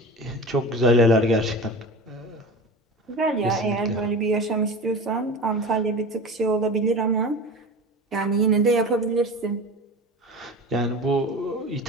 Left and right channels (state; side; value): normal; both; correlation 0.32